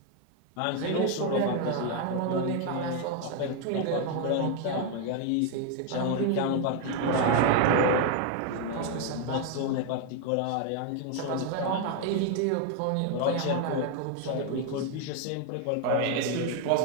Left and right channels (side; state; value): both; different; correlation 0.01